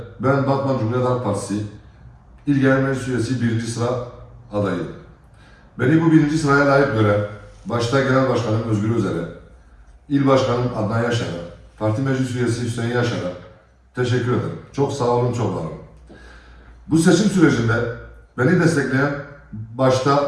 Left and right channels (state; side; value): identical; both; correlation 1.00